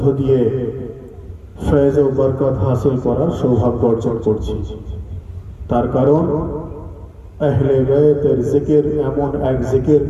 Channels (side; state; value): both; identical; correlation 1.00